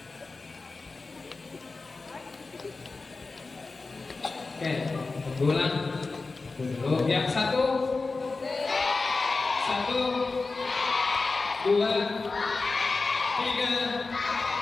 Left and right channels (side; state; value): right; quieter; 3.8 dB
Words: Oke, ulang dulu. Yang satu, dua, tiga.